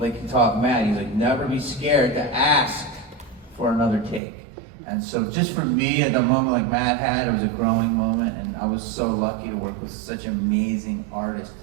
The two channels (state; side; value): drops out; left; at 4.2 s